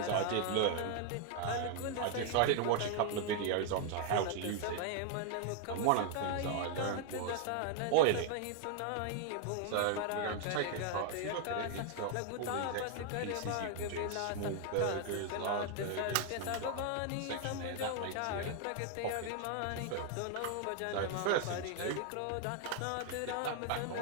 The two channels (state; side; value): different; both; correlation 0.00